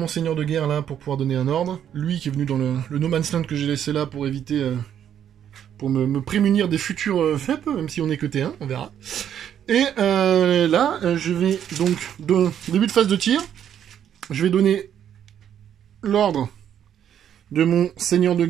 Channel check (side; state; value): left; quieter; 9.6 dB